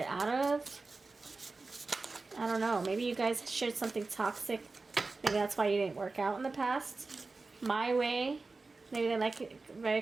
out of. I don't know. Maybe you guys shared something toxic. Maybe that's why you didn't work out in the past. My way. Maybe they like it very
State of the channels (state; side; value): quieter; left; 3.8 dB